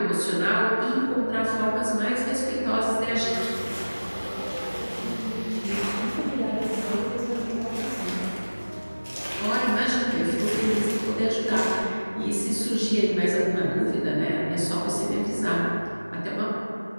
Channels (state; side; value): inverted; both; correlation -1.00